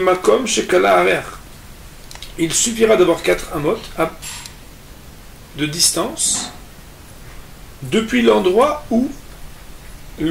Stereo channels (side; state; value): both; identical; correlation 1.00